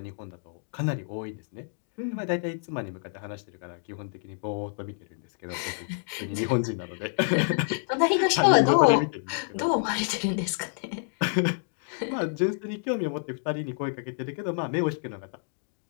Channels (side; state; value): right; silent; digital silence